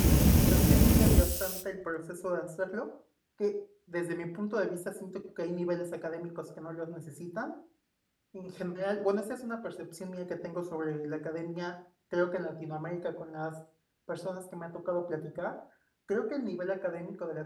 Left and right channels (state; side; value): identical; both; correlation 1.00